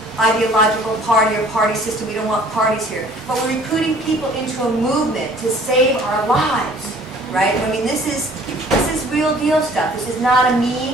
ideological party or party system. We don't want parties here. But we're recruiting people into a movement to save our lives, right? I mean, this is real deal stuff. This is not a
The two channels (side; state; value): both; normal; correlation 0.54